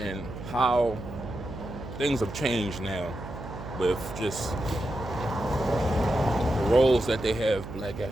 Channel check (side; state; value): right; noise; hum, 11 dB below the sound